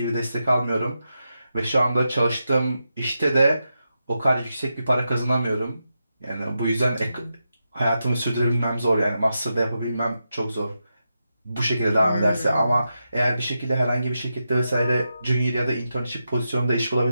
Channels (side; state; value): both; inverted; correlation -0.87